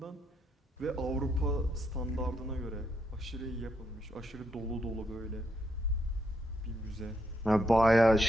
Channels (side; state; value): both; normal; correlation 0.77